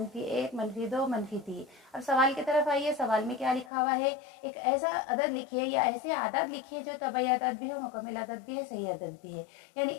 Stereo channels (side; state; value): right; drops out; at 3.7 s